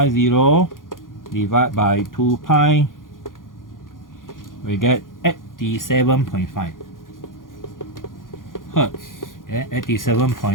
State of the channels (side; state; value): right; late; 0.90 ms